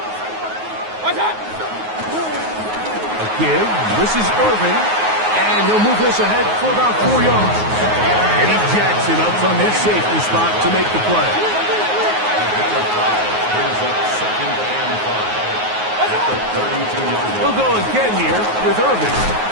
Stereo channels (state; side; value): late; left; 9.4 ms